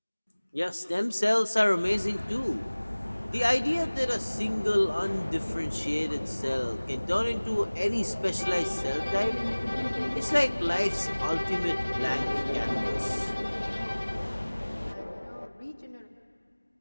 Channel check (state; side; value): inverted; both; correlation -1.00